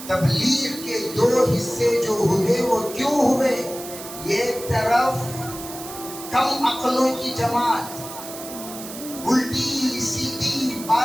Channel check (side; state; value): right; noise; hiss, 12 dB below the sound